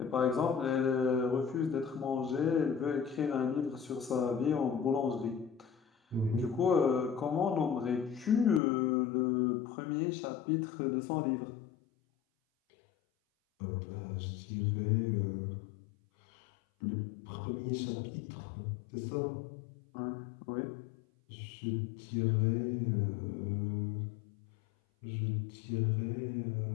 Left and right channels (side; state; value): right; drops out; at 8.6 s